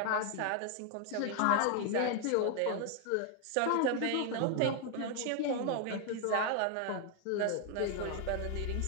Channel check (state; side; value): different; both; correlation 0.00